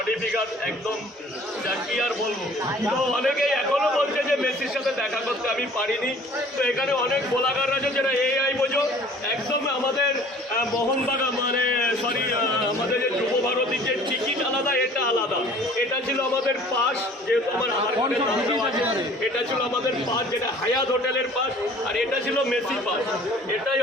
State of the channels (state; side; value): normal; both; correlation 0.50